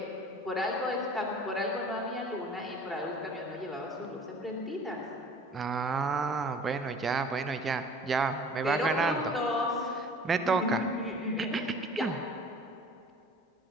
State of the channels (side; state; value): both; normal; correlation 0.47